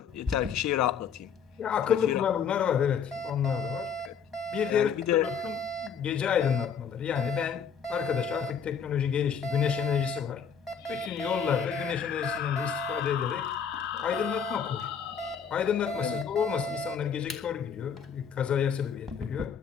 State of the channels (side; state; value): right; quieter; 7.0 dB